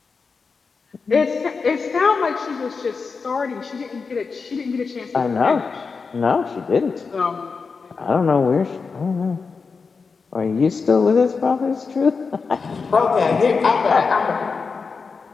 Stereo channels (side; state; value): right; quieter; 4.9 dB